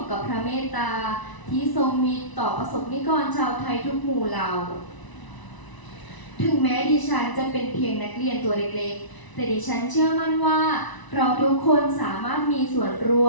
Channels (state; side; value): late; right; 1.0 ms